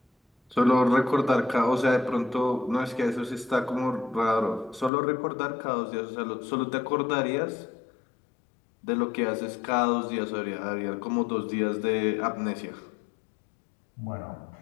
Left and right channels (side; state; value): right; drops out; at 4.9 s